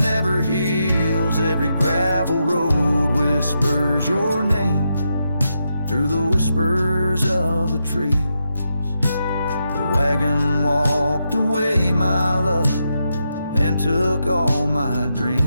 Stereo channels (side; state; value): both; inverted; correlation -0.84